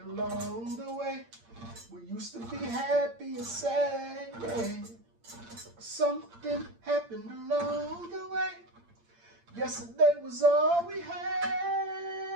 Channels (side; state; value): left; late; 8.7 ms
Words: the way. We used to be happy and sad, yeah. Something happened along the way. Yesterday was all we had.